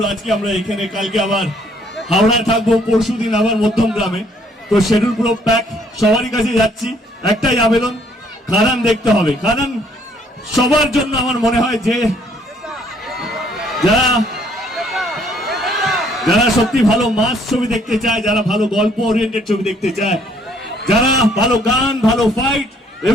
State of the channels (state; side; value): normal; both; correlation 0.64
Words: আজকে আমরা এখানে, কালকে আবার হাওড়ায় থাকবো, পরশুদিন আবার মধ্যমগ্রামে। তো শিডিউল পুরো প্যাক, সবারই কাছে যাচ্ছি, একটাই আবেদন, খাদান দেখতে হবে। খাদান সবার জন্য আমার মনে হয় যে যারা যারা সত্যি ভালো মাস ছবি দেখতে চায়, যারা ভালো গল্প ওরিয়েন্টেড ছবি দেখতে চায়, যারা ভালো গান, ভালো ফাইট